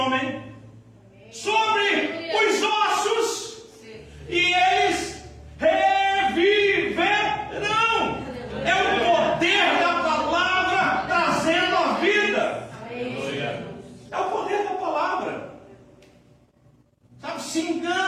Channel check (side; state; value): both; identical; correlation 1.00